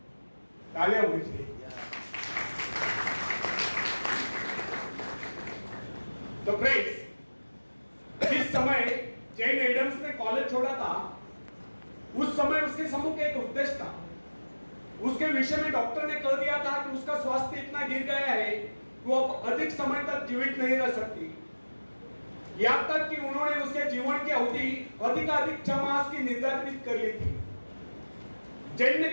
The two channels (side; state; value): both; inverted; correlation -1.00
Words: तालियां होनी चाहिए। तो फ्रेंड्स, जिस समय जेन एडम्स ने कॉलेज छोड़ा था, उस समय उसके सम्मुख एक उद्देश्य था। उसके विषय में डॉक्टर ने कह दिया था कि उसका स्वास्थ्य इतना गिर गया है कि वो अब अधिक समय तक जीवित नहीं रह सकती। यहां तक कि उन्होंने उसके जीवन की अवधि अधिकाधिक 6 मास की निर्धारित कर ली थी। जैन ने